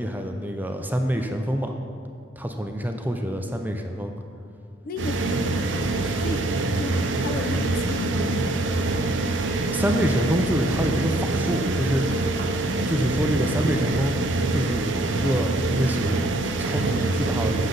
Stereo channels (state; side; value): normal; both; correlation 0.66